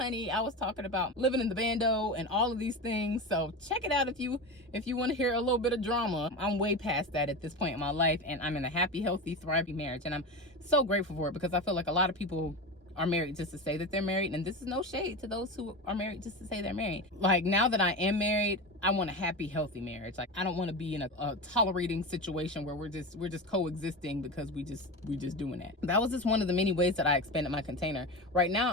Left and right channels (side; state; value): both; normal; correlation 0.23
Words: I was talking about living in the bando and all of these things. So check it out if you want to hear a little bit of drama. I'm way past that at this point in my life, and I'm in a happy, healthy, thriving marriage. And I'm so grateful for it, because I feel like a lot of people are married just to say that they're married, and this is no shade to those who are married just to say they're married. Like, now that I am married, I want a happy, healthy marriage. Like, I don't want to be in a tolerating situation where we're just coexisting because we just doing that. That was just one of the many ways that I expanded my container. Right